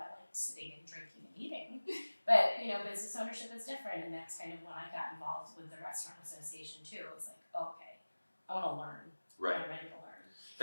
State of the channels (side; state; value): both; inverted; correlation -1.00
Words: liked sitting and drinking and eating, but business ownership is different, and that's kind of when I got involved with the restaurant association too. It was like, okay, I want to learn. Right. I'm ready to learn.